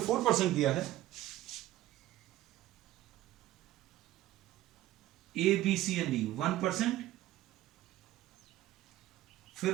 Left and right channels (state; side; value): quieter; left; 14.9 dB